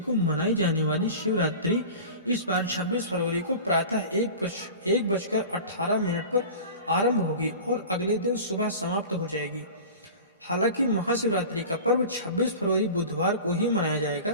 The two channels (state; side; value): inverted; both; correlation -0.36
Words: मनाई जाने वाली शिवरात्रि इस बार 26 फरवरी को प्रातः 1:18 पर आरंभ होगी और अगले दिन सुबह समाप्त हो जाएगी। हालांकि महाशिवरात्रि का पर्व 26 फरवरी बुधवार को ही मनाया